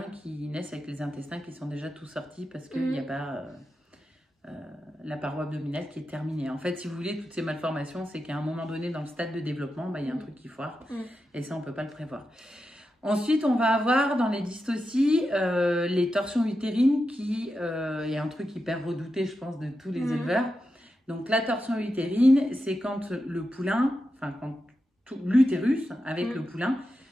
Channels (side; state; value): both; normal; correlation 0.89